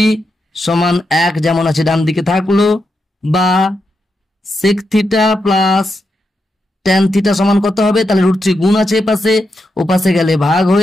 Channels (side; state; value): both; normal; correlation 0.85